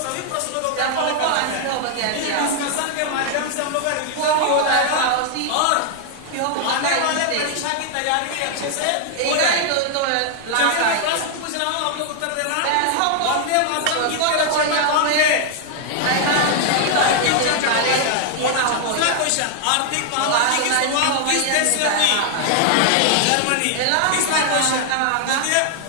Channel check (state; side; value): different; both; correlation 0.00